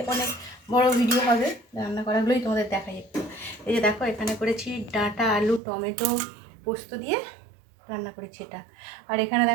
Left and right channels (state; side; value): drops out; left; at 5.6 s